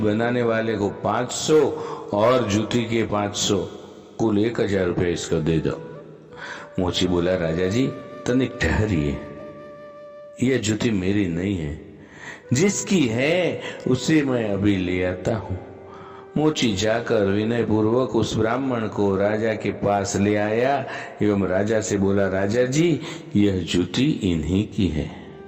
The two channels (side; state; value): both; identical; correlation 1.00